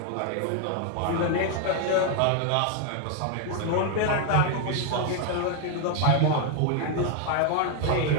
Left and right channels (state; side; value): different; both; correlation 0.01